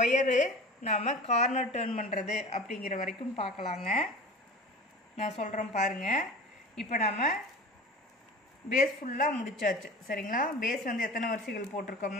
ஒயரு நாம் கார்னர் டர்ன் பண்ணுறது அப்படிங்கிற வரைக்கும் பார்க்கலாங்க. நான் சொல்கிறேன் பாருங்கள். இப்போ நாம் பேஸ் ஃபுல்லாக முடிச்சாச்சு. சரிங்களா? பேஸ் வந்து எத்தனை வரிசைகள்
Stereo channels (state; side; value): normal; both; correlation 0.37